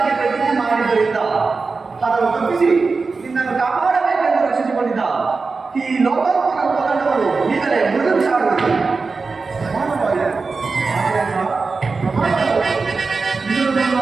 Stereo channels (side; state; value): left; quieter; 4.3 dB